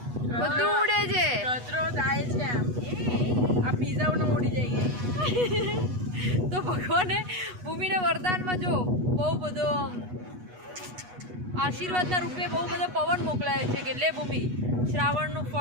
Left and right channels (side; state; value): left; late; 8.2 ms